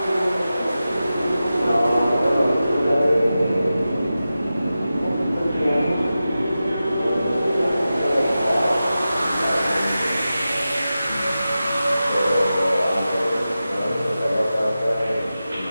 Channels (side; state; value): both; inverted; correlation -0.93